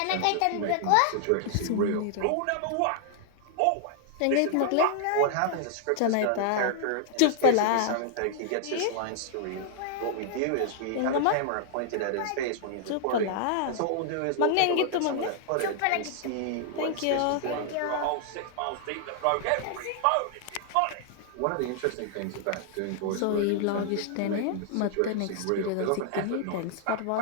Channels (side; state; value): both; different; correlation -0.01